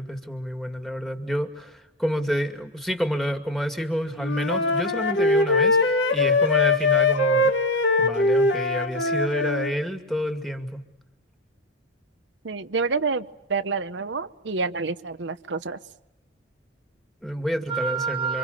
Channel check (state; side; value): normal; both; correlation 0.15